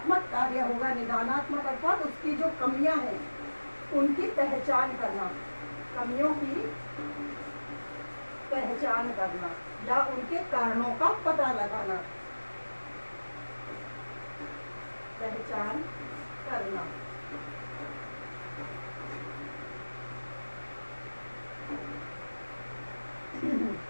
कार्य होगा, निदानात्मक अर्थात उसकी जो कमियां हैं उनकी पहचान करना, कमियों की पहचान करना या उनके कारणों का पता लगाना, पहचान करना।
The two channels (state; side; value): inverted; both; correlation -1.00